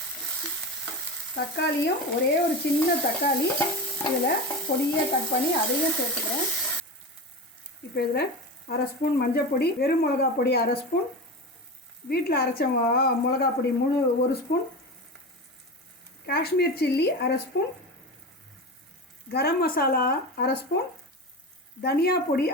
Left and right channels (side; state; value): both; normal; correlation 0.25